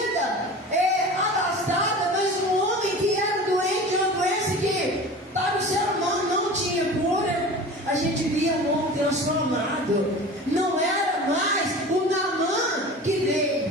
abastada, mas um homem que era doente, uma doença que para o ser humano não tinha cura. A gente via um homem transformado. Não era mais o Naamã que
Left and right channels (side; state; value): both; normal; correlation 0.36